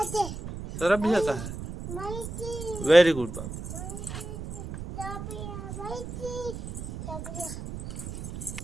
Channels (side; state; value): right; noise; rumble, 8 dB below the sound